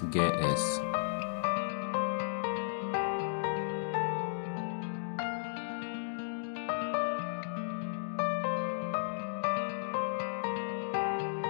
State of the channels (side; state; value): right; silent; digital silence